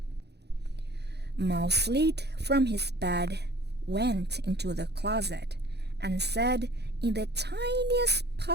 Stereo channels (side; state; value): left; late; 0.48 ms